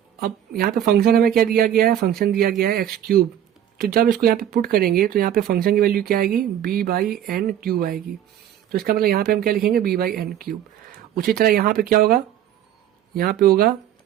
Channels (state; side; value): quieter; left; 10.7 dB